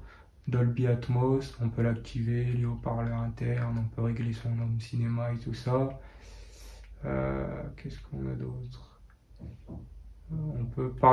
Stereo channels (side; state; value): both; identical; correlation 1.00